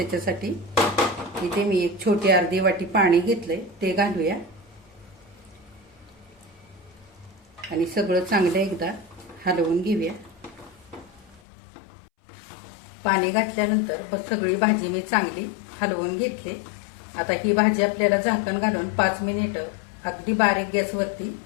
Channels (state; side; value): drops out; right; at 11.4 s